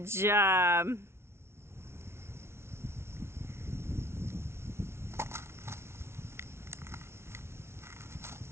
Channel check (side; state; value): left; late; 0.12 ms